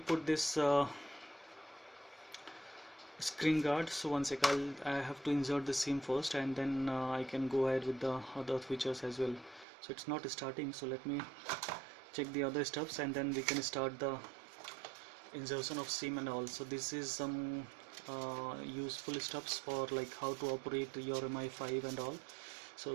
this screen guard. So one sec, I have to insert the SIM first, and then I can go ahead with the other features as well. So it's not starting, so let me check the other steps and then we can start the insertion of SIM and all. So this is some useful steps for like how to operate your Mi5 and all. So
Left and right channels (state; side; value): drops out; left; at 9.7 s